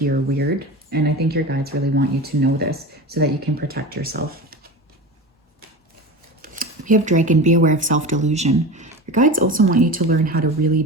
or weird. And I think your guides really want you to know this so that you can protect yourself. We have Dragon. Be aware of self-delusion. Your guides also want you to learn how to really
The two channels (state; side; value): normal; both; correlation 0.29